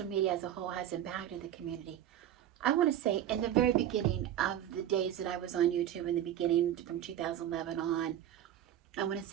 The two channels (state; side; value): quieter; left; 11.3 dB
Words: media as a whole has impacted the community? I want to say in the very beginning of the days that I was on YouTube, in the beginning from 2011 on, I want to